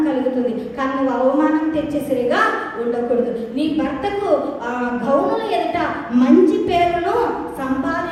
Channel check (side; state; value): both; identical; correlation 1.00